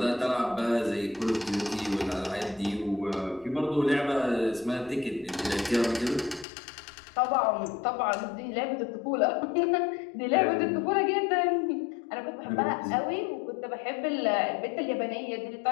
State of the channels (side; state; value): right; drops out; at 6.5 s